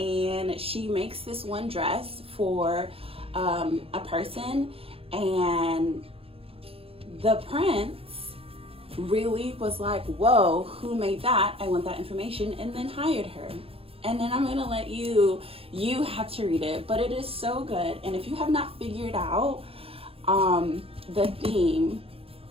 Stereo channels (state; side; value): late; left; 0.27 ms